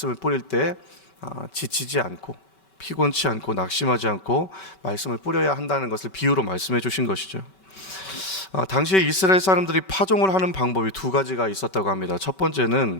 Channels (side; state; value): right; late; 5.2 ms